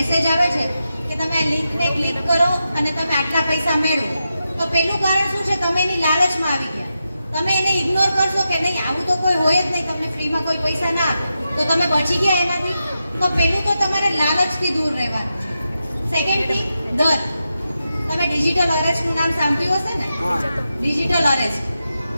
આવે છે કે તમે આ લિંકને ક્લિક કરો અને તમે આટલા પૈસા મેળવો, તો પહેલું કારણ શું છે? તમે એની લાલચમાં આવી ગયા. તમે એને ઇગ્નોર કરશો કે નહીં આવું તો કોઈ હોય જ નહીં, તમને ફ્રીમાં કોઈ પૈસા ના આપે, તો તમે બચી ગયા એનાથી. તો પહેલું તો તમારે લાલચથી દૂર રહેવાનું છે. સેકન્ડ થિંગ, દર. તમે ડિજિટલ અરેસ્ટનું નામ સાંભળ્યું હશે ને? હા. Digital arrest.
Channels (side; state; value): both; inverted; correlation -0.88